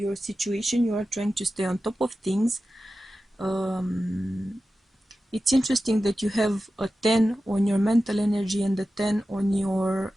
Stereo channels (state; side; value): normal; both; correlation 0.93